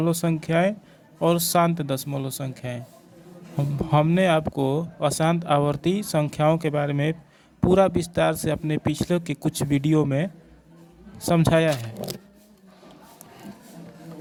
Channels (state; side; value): identical; both; correlation 1.00